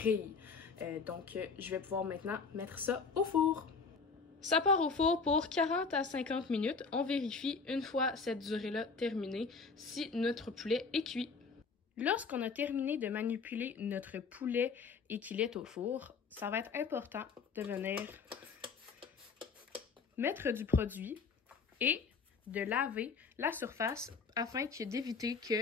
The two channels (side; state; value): right; quieter; 5.0 dB